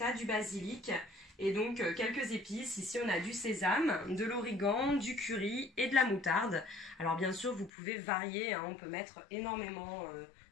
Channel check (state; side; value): drops out; right; at 7.7 s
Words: du basilic et donc quelques épices. Ici on a du sésame, de l'origan, du curry et de la moutarde. Alors bien sûr vous pouvez varier, hein, on peut mettre énormément